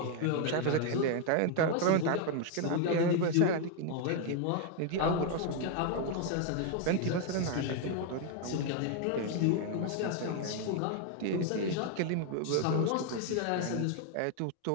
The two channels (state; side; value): different; both; correlation 0.01